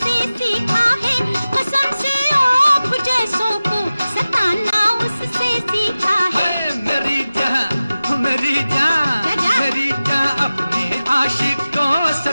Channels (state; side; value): inverted; both; correlation -0.96